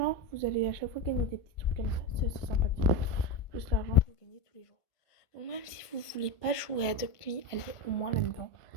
Vous allez à chaque fois gagner des petits trucs comme ça. C'est assez sympathique. Plus l'argent que vous gagnez tous les jours. Donc même si vous voulez pas jouer à Adopt Me, allez au moins là-dedans.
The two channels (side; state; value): right; late; 1.4 ms